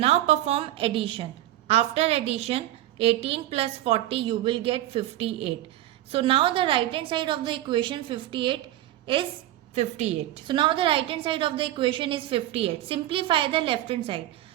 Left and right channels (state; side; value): quieter; left; 14.3 dB